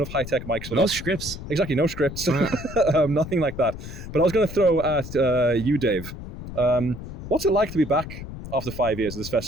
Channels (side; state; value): left; noise; rumble, 10 dB below the sound